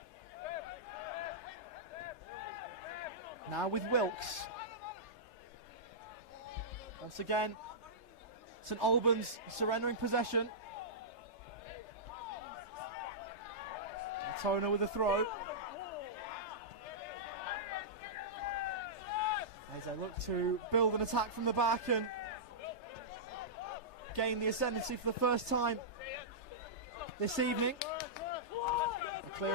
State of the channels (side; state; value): right; late; 3.3 ms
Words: Now with Wilkes. Once again, St Albans surrendering possession. Altona with a throw. As they look to build an attack from the back and gain the ascendancy for the first time this evening. A